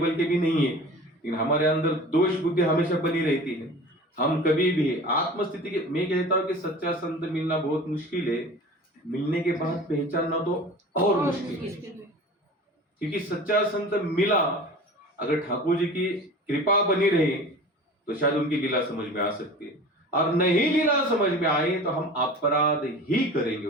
के भी नहीं है, लेकिन हमारे अंदर दोष बुद्धि हमेशा बनी रहती है। हम कभी भी आत्मस्थिति के, मैं कहता हूँ कि सच्चा संत मिलना बहुत मुश्किल है, मिलने के बाद पहचानना तो और मुश्किल है। क्योंकि सच्चा संत मिला, अगर ठाकुर जी की कृपा बनी रही तो शायद उनकी लीला समझ में आ सकती है, और नहीं लीला समझ में आई तो हम अपराध ही करेंगे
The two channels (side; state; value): both; normal; correlation 0.38